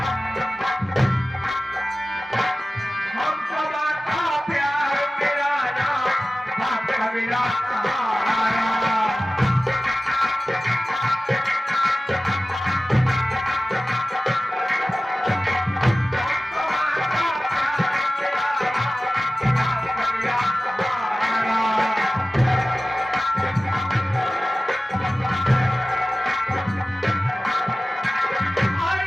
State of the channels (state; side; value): normal; both; correlation 0.96